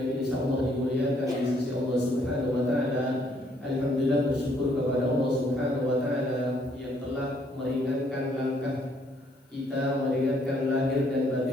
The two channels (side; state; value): both; normal; correlation 0.67